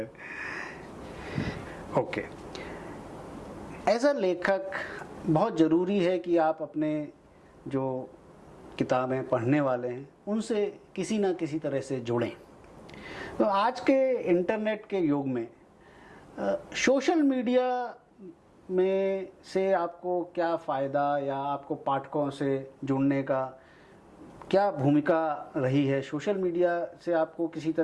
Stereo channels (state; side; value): identical; both; correlation 1.00